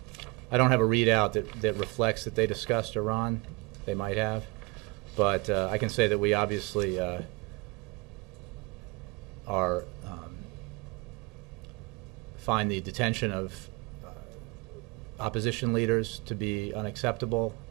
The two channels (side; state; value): left; quieter; 25.6 dB